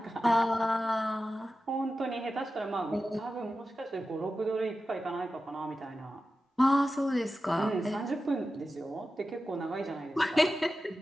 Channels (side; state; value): both; normal; correlation 0.93